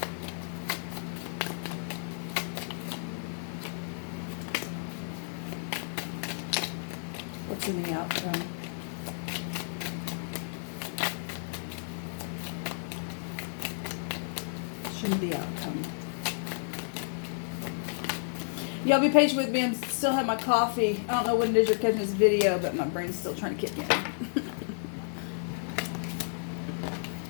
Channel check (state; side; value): silent; right; digital silence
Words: What's in the outcome? Show me the outcome. Y'all be patient with me. I still have my coffee. I don't know when it is you're catching this video, but my brain's still trying to kick in.